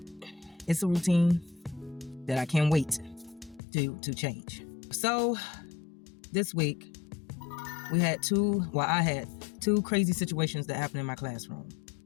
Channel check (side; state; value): right; drops out; at 3.6 s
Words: it's a routine that I can't wait to change. So, this week, I had two crazy situations that happened in my classroom,